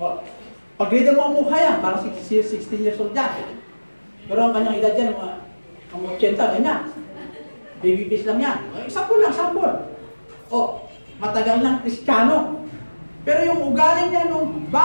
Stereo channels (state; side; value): inverted; both; correlation -1.00